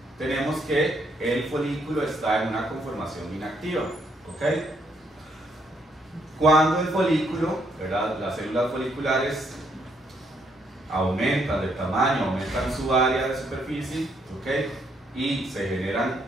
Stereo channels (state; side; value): normal; both; correlation 0.72